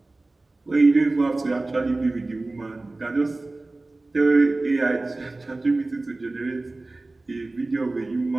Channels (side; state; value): left; quieter; 3.1 dB